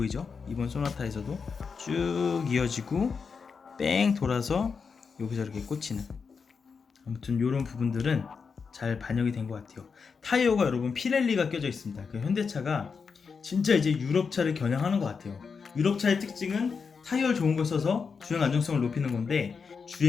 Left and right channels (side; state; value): right; quieter; 5.5 dB